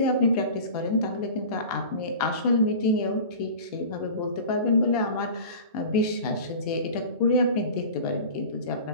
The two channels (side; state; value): both; inverted; correlation -0.36